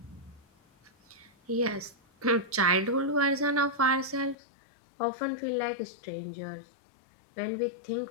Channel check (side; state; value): right; drops out; at 4.4 s